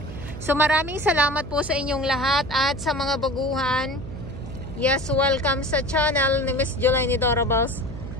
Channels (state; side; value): noise; right; hum, 11 dB below the sound